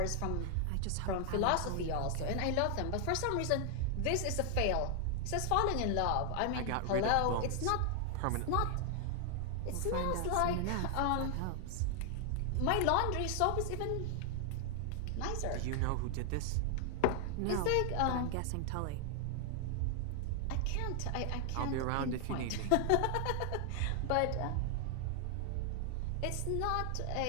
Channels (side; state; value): both; different; correlation 0.00